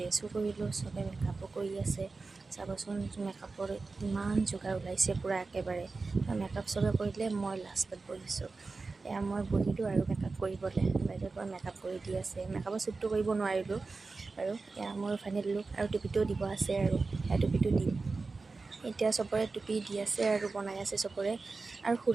কৰিলোঁ, চবে মেকআপো কৰি আছে। চাবচোন মেকআপৰ ইমান যোগাৰ ওলাইছে পূৰা একেবাৰে। মেকআপ চবে কৰিলে, মই লাষ্টত বহিছোঁ। এয়া মই বহিলোঁ আৰু মেকআপ কৰিবলৈ, বাইদেউৰ পৰা মেকআপ কৰি দি আছে। মেকআপৰ শ্বুটটো কৰিব নোৱাৰিলোঁ আৰু এয়া মোৰ ফাইনেল লুক। আৰু টুপিটোও দিব আছে আৰু সেয়া টুপিটো দিম। এতিয়া চবৰে টুপি দি আছে আৰু বনাই আছে চবৰে। আৰু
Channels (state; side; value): quieter; left; 3.9 dB